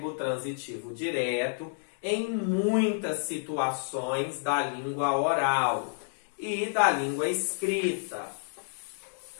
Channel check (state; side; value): silent; right; digital silence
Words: transitivo direto em muitas situações da língua oral e da língua escrita.